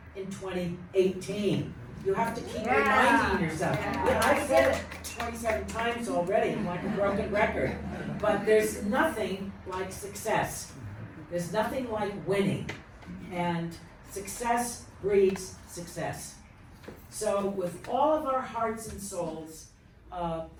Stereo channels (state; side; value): identical; both; correlation 1.00